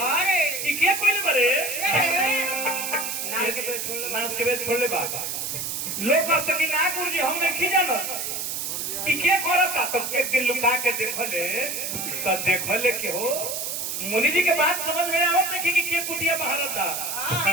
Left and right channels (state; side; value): noise; right; hiss, 3 dB below the sound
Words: के कोई भरे नाश के बेद छोड़ ले बाबा लोग कह सकी ना गुरु जी हम नहीं जानत के करता तो एक दिन लुका के देखले के हो मुनि जी के बात समझ में आवत देखी कि के कुटिया बहारता